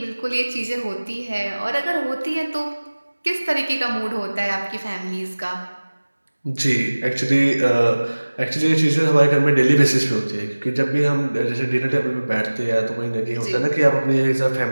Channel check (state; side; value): inverted; both; correlation -1.00